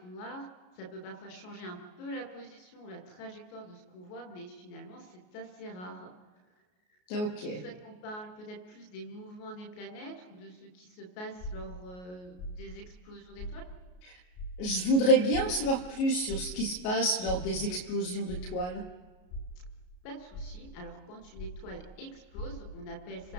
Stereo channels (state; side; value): late; right; 33 ms